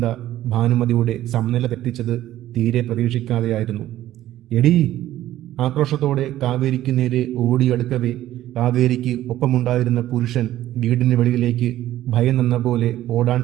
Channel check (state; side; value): quieter; left; 13.8 dB